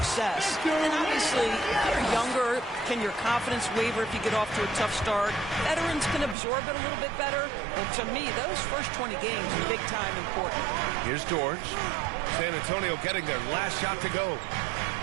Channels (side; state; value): left; drops out; at 6.4 s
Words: And obviously, if you're younger, can your confidence waver if you get off to a tough start? Veterans can absorb it a little bit better. But to me, those first 20 games are big time important. Here's George. San Antonio getting their last shot to go.